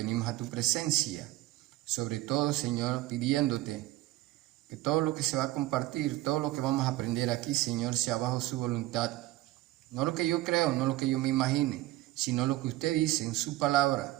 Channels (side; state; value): left; quieter; 17.0 dB